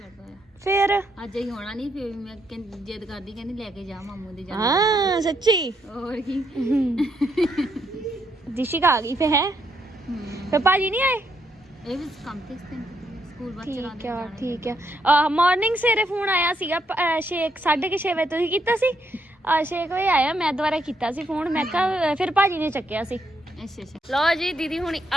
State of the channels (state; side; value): normal; both; correlation 0.76